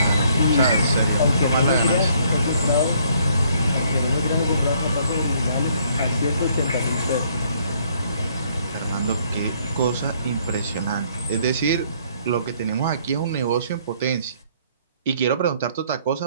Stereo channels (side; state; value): both; inverted; correlation -0.65